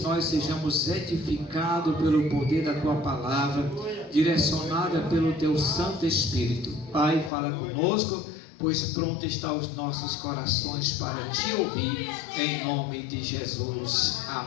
nós sejamos edificados pelo poder da tua palavra, direcionada pelo teu Santo Espírito. Pai, fala conosco, pois pronto está os nossos corações para te ouvir, em nome de Jesus.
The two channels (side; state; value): right; drops out; at 7.3 s